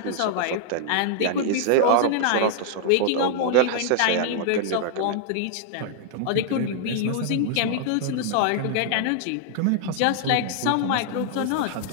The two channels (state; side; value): different; both; correlation -0.01